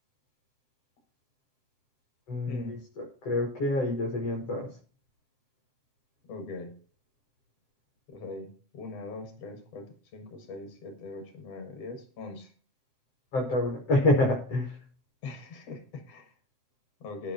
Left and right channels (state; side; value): late; right; 7.6 ms